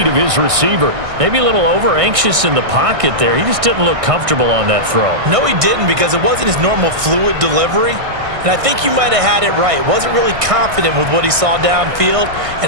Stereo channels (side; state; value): left; late; 1.6 ms